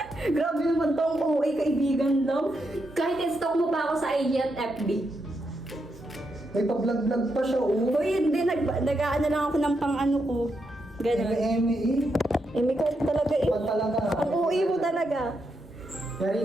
Grabe naman tong OA kaibigan lang. Kahit i-stalk mo pa ako sa IG at FB. May pa-vlog-vlog pa siya, oh. Uy, hindi. Nag-aano lang ako ng pang-ano ko. Ganun. Eme. May ka talaga eh. Pag talaga. Ang OA mo talaga.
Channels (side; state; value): both; normal; correlation 0.82